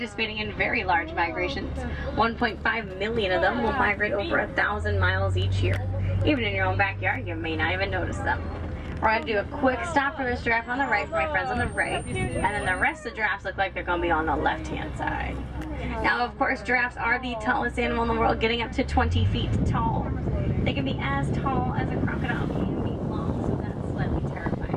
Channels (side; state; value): both; identical; correlation 1.00